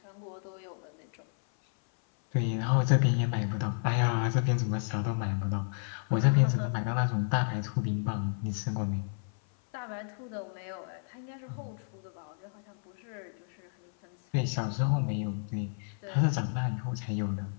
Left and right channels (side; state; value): right; silent; 56 dB below the other